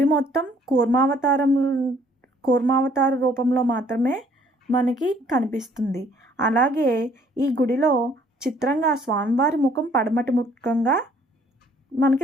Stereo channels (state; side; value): normal; both; correlation 0.61